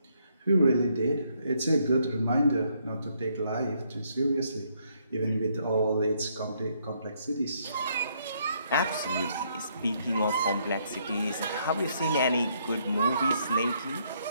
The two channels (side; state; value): both; inverted; correlation -0.72